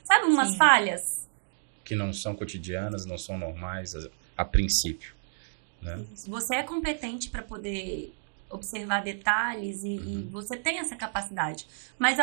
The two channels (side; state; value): left; silent; digital silence